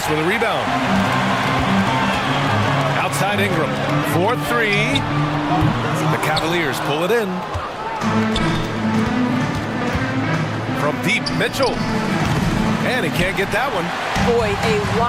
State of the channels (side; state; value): both; identical; correlation 1.00